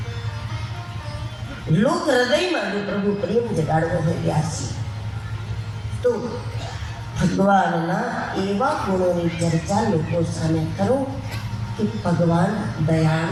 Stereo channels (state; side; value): identical; both; correlation 1.00